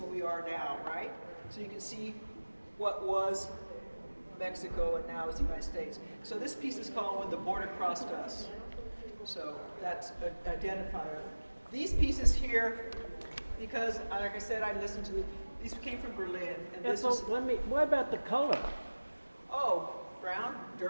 we are now, right? So you can see what was Mexico and now is the United States. So this piece is called When the Border Crossed Us. So that's an identifier. These pieces here, because, like I said, I listened to these came from Berlin. And this So what about the color? Oh, brown,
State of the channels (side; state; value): both; inverted; correlation -1.00